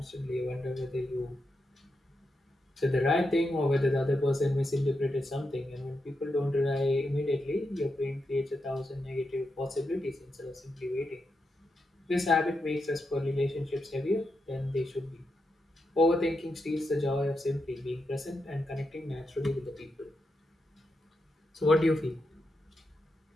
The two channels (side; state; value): both; normal; correlation 0.85